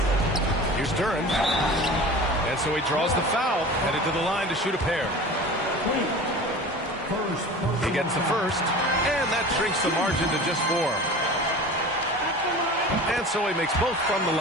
Here's Duren. And so he draws the foul, headed to the line to shoot a pair. He gets the first, and that shrinks the margin to just 4. And so he makes both from the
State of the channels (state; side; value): normal; both; correlation 0.37